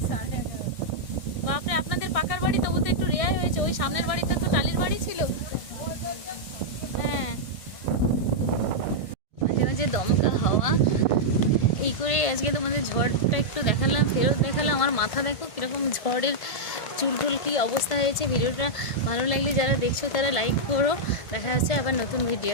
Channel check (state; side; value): late; right; 1.5 ms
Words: 11:30। বাপরে, আপনাদের পাকার বাড়ি তবু তো একটু রেয়াই হয়েছে। ওই সামনের বাড়িতে তো টালির বাড়ি ছিল। হ্যাঁ, মাঝে মাঝে দমকা হাওয়া। এই করে আজকে তোমাদের ঝড়টা একটু দেখালাম, ফেরত দেখালাম। আমার মাথা দেখো কীরকম ঝড়ের চুলটুল কী অবস্থা হয়েছে। ভিডিওটা ভালো লাগলে যারা দেখছো তারা লাইক করো। দেখা যাচ্ছে আবার নতুন ভিডিও।